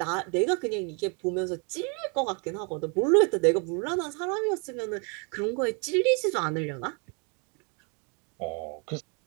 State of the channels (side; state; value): left; quieter; 35.3 dB